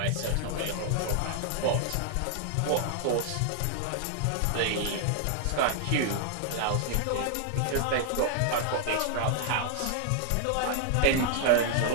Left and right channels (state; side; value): different; both; correlation 0.00